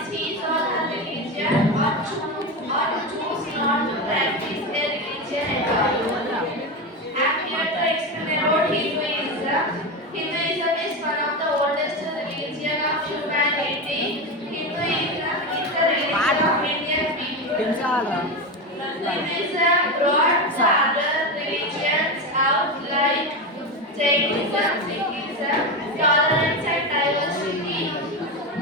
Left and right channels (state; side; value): normal; both; correlation 0.17